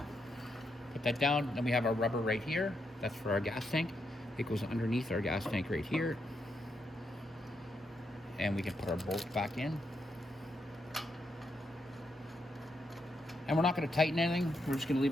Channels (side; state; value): both; normal; correlation 0.81